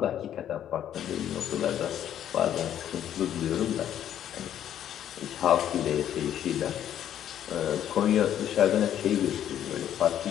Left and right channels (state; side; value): quieter; right; 10.6 dB